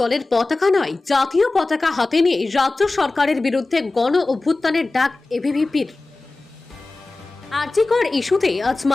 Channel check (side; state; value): right; quieter; 3.2 dB